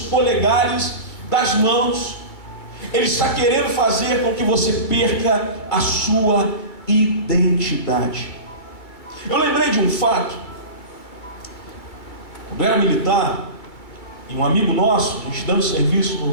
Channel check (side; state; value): right; late; 2.2 ms